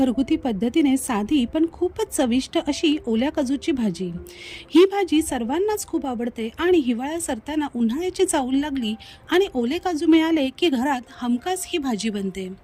पद्धतीने साधी पण खूपच चविष्ट अशी ओल्या काजूची भाजी. ही भाजी सर्वांनाच खूप आवडते आणि हिवाळा सरताना उन्हाळ्याची चाहूल लागली आणि ओले काजू मिळाले की घरात हमखास ही भाजी बनते.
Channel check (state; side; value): identical; both; correlation 1.00